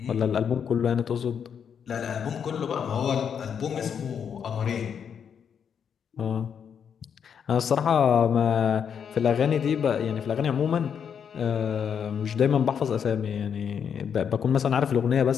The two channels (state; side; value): quieter; right; 7.5 dB